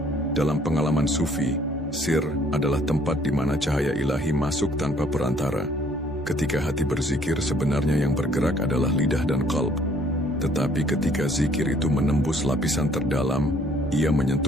Dalam pengalaman sufi, sir adalah tempat di mana cahaya ilahi masuk tanpa perantara. Ketika hati berzikir, sebenarnya yang bergerak adalah lidah dan qalb. Tetapi ketika zikir itu menembus lapisan terdalam, ia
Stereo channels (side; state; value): both; normal; correlation 0.61